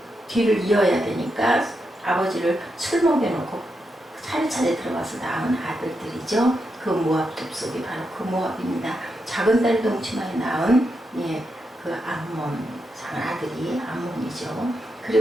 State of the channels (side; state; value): both; normal; correlation 0.84